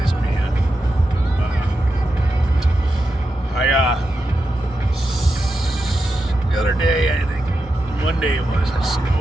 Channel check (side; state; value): both; normal; correlation 0.88